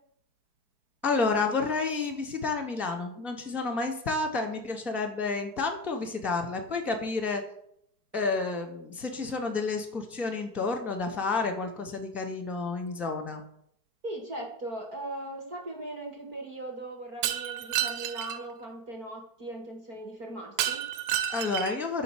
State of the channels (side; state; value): left; late; 5.0 ms